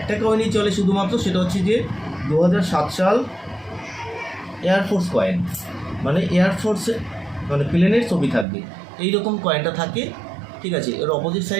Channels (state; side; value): drops out; left; at 8.5 s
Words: কয়েনই চলে শুধুমাত্র, সেটা হচ্ছে যে 2007 সাল এয়ারফোর্স কয়েন, মানে এয়ারফোর্সে মানে প্লেনের ছবি থাকবে, এইরকম কয়েনটা থাকে, ঠিক আছে। এর অপোজিট